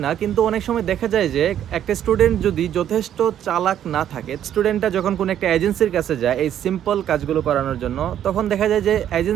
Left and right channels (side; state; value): left; quieter; 10.5 dB